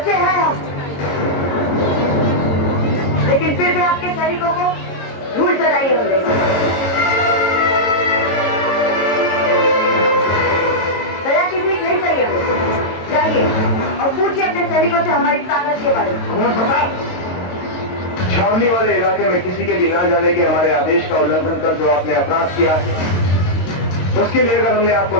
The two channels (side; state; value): right; late; 22 ms